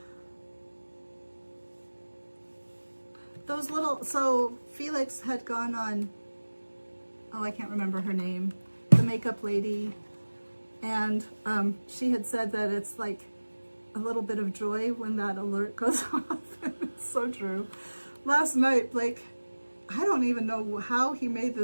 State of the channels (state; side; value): inverted; both; correlation -1.00